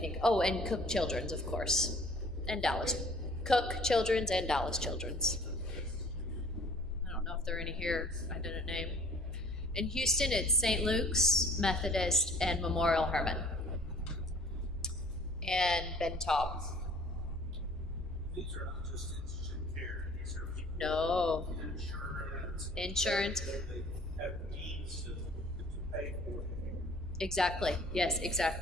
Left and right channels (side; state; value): both; normal; correlation 0.52